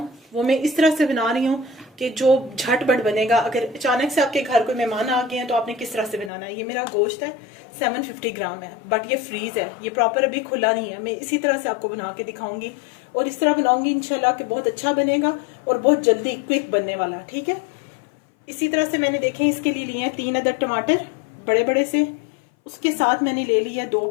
वो मैं इस तरह से बना रही हूँ कि जो झटपट बनेगा। अगर अचानक से आपके घर कोई मेहमान आ गए हैं तो आपने किस तरह से बनाना है। ये मेरा गोश्त है, 750 ग्राम है, बट ये फ्रीज है, ये प्रॉपर अभी खुला नहीं है। मैं इसी तरह से आपको बना के दिखाऊंगी और इस तरह बनाऊंगी इंशाल्लाह कि बहुत अच्छा बनेगा और बहुत जल्दी क्विक बनने वाला। ठीक है, इसी तरह से मैंने देखें इसके लिए हैं 3 अदद टमाटर बड़े बड़े से। उसके साथ मैंने ले लिया 2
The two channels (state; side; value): drops out; right; at 6.3 s